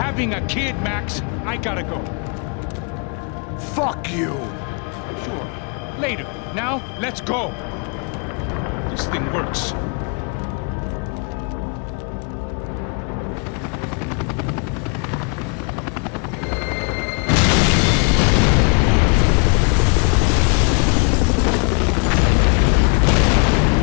a kid, Max. I gotta go. Fuck you. Sure. Later. Now, let's go. This thing works.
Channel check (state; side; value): quieter; right; 37.1 dB